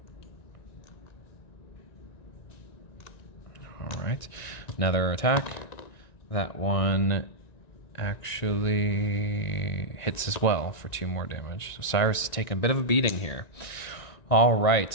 All right, another attack. That one actually hits as well for 2 more damage. So Cyrus is taking a bit of a beating here. All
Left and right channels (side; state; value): right; late; 1.9 ms